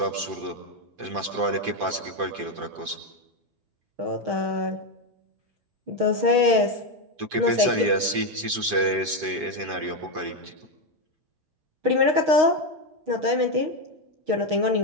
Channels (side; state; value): left; late; 6.3 ms